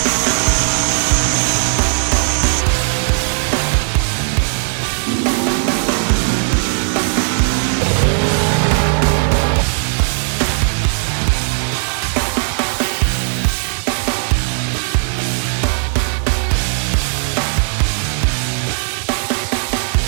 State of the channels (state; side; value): silent; left; digital silence